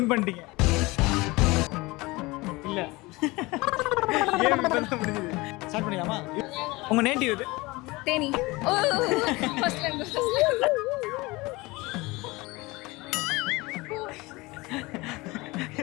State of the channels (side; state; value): right; quieter; 22.6 dB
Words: பண்ணிட்டீங்க. இல்ல. கேம் இப்பதான் முடிஞ்சது. ஸ்டார்ட் பண்ணிடலாமா? உங்க நேட்டிவ் இது? தேனி. ஓ ஃபர்ஸ்ட்ல இருந்து.